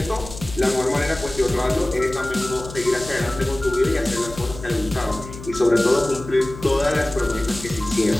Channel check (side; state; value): left; noise; hum, 13 dB below the sound